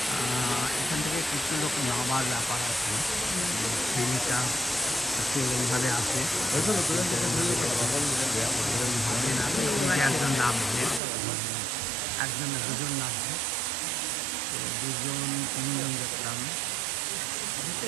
ভাবার ব্যাপার আছে, ফিলটা এইভাবে আসে ভাবে না, একজন নামছে, একজন দুজন নামছে, দুজন তিনজন দেখলাম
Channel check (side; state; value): left; drops out; at 11.0 s